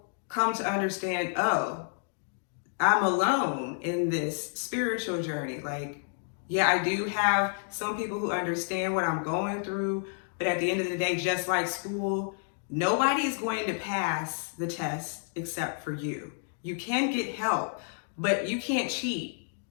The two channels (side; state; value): right; silent; 58 dB below the other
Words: come to understand, oh, I'm alone in this spiritual journey. Like, yeah, I do have some people who understand what I'm going through, but at the end of the day, just like school, nobody is going to pass the test except for you. You can get help, but you can't cheat